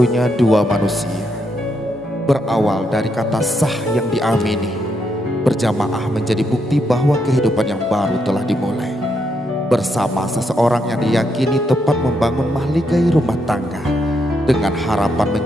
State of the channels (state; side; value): normal; both; correlation 0.79